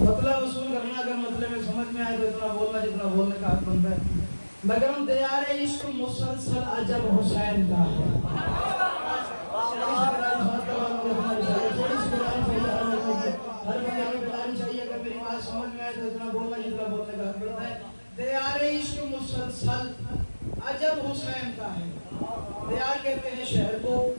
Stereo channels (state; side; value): inverted; both; correlation -1.00